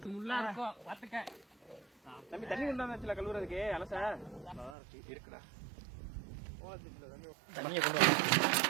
தம்பி தண்ணி கொண்டாந்துல கழுவுறதுக்கு அலச இருக்குடா. தண்ணியை கொண்டு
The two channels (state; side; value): drops out; left; at 4.8 s